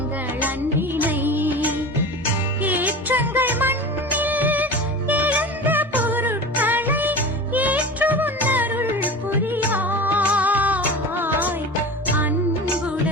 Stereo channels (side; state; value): both; normal; correlation 0.32